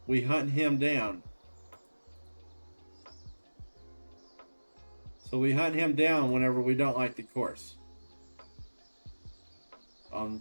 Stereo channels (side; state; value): both; inverted; correlation -1.00